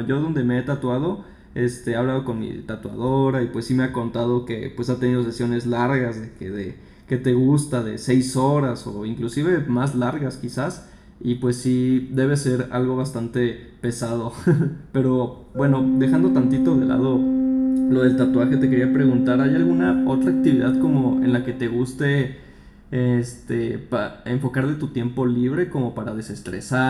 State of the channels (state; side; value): identical; both; correlation 1.00